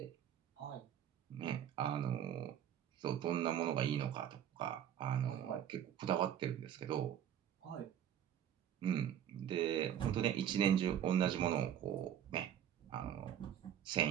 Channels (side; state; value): left; quieter; 10.0 dB